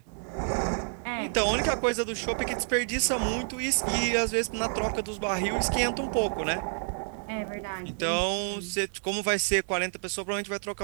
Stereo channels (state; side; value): silent; left; 59 dB below the other